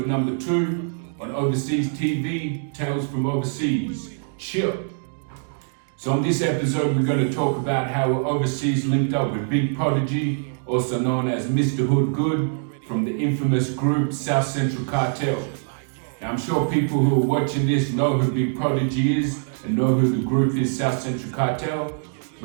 number 2 on Ovaseaz TV, Tales from Overseas. Chill. So on this episode, we're going to talk about how Ovaseaz linked up with Big Prodeje, also known as Mr. Hood Good, from the infamous group South Central CARTEL. Now I'm sure people who are watching this know who Big Prodeje is and know who the group is, South Central CARTEL.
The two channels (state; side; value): silent; left; digital silence